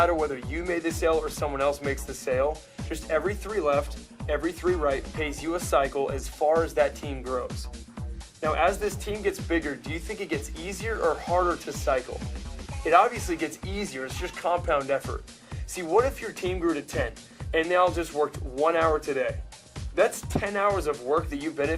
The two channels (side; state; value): both; identical; correlation 1.00